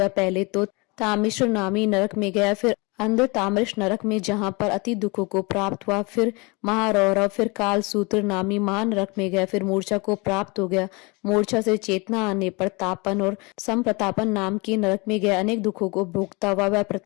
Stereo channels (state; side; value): quieter; right; 27.9 dB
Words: पहले तो तामिश्र नामी नरक में गया, फिर अंध ताम्रश नरक में जहां पर अति दुखों को प्राप्त हुआ, फिर महारौरव, फिर काल सूत्र नामी महानरक में गया, फिर मूर्छा को प्राप्त हो गया। मूर्छा से चेतना आने पर तापन और संप्रतापन नाम के नरक में गया। अनेक दुखों को भोगता हुआ वह